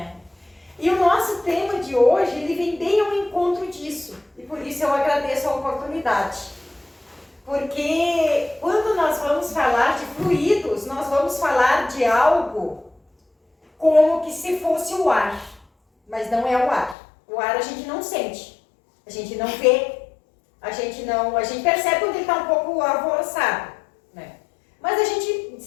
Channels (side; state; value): right; drops out; at 16.9 s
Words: E o nosso tema de hoje, ele vem bem ao encontro disso, e por isso eu agradeço a oportunidade. Porque quando nós vamos falar de fluidos, nós vamos falar de algo como que se fosse o ar, mas não é o ar. O ar a gente não sente, a gente não vê, a gente percebe quando ele está um pouco alvoroçado, né? Mas a gente